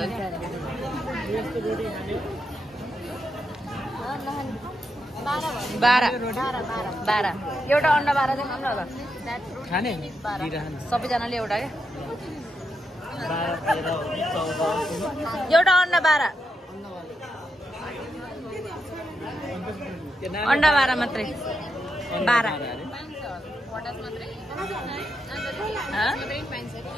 बाह्र एउटा अन्डा 12 चाहिँ खानु होला खाने सबैजनाले एउटा क्या एउटा अन्डा 12 अन्डा 12 मात्रै 12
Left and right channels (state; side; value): normal; both; correlation 0.84